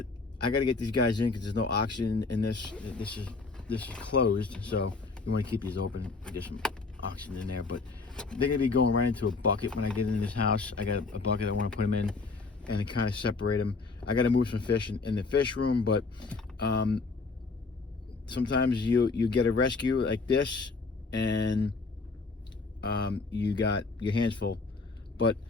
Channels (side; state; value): right; quieter; 4.0 dB